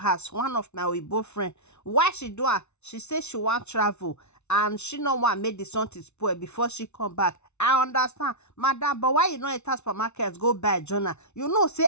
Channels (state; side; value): late; right; 0.81 ms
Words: One of my Weibo friend. Why she do her? She says she want travel and she no want make the something spoil before she come back. I understand, madam, but why you not enter supermarket go buy journal? You know, say